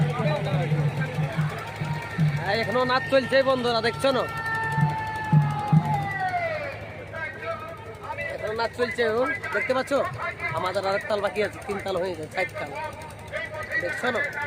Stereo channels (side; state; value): both; identical; correlation 1.00